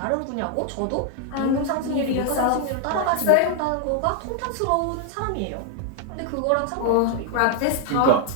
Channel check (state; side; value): different; both; correlation 0.00